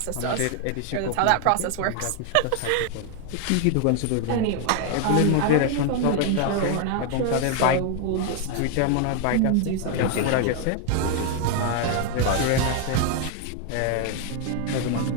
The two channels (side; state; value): both; different; correlation 0.00